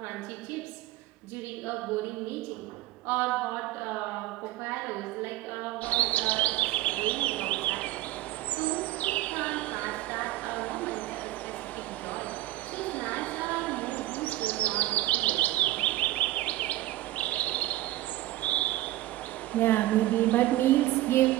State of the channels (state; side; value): quieter; left; 16.0 dB